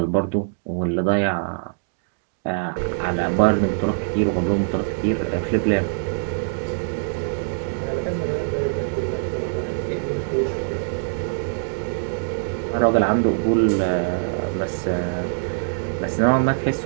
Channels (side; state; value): left; silent; digital silence